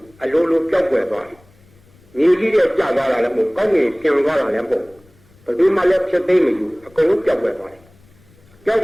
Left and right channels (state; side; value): noise; left; rumble, 29 dB below the sound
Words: းအလိုလိုပျောက်ကွယ်သွားတယ်မြေကြီးတဲ့ကျသွားတာလည်းမဟုတ်ကောင်းငင်ပြန်သွားတာလည်းမဟုတ်ဘယ်သူမှလည်းဖြစ်သိမယူအကုန်လုံးပျောက်ကွယ်သွားတယ်ပျောက်